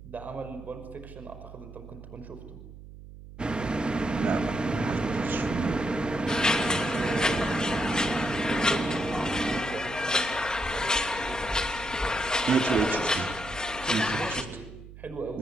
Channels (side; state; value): right; noise; hum, 16 dB below the sound